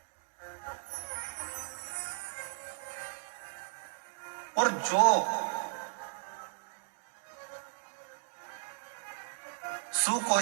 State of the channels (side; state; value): left; silent; digital silence